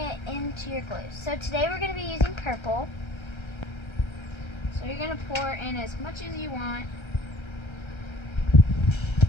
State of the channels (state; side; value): late; right; 1.3 ms